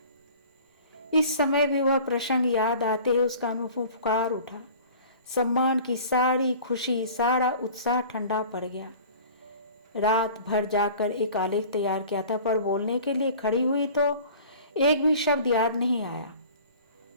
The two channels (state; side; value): inverted; both; correlation -0.44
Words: इस समय भी वह प्रसंग याद आते ही उसका अनुभव फुकार उठा। सम्मान की सारी खुशी, सारा उत्साह ठंडा पड़ गया। रात भर जाकर एक आलेख तैयार किया था, पर बोलने के लिए खड़ी हुई तो एक भी शब्द याद नहीं आया।